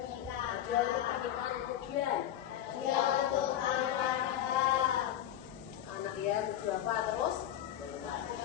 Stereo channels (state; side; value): quieter; right; 11.5 dB